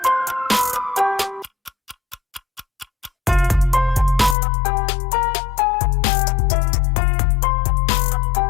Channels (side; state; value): right; drops out; at 4.4 s